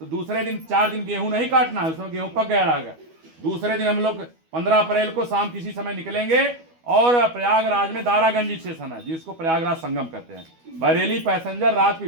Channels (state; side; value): late; left; 12 ms